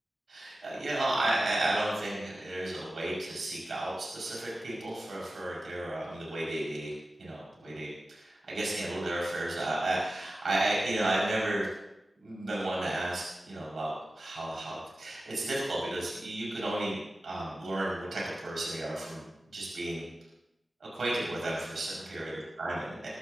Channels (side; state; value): both; normal; correlation 0.95